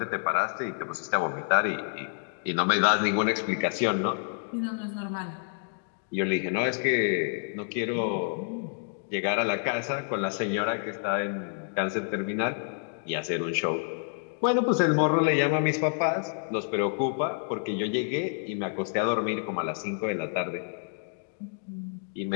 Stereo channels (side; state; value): right; silent; 59 dB below the other